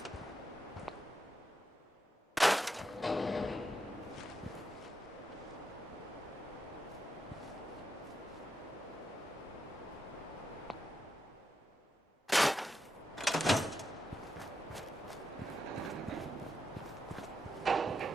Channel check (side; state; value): both; normal; correlation 0.84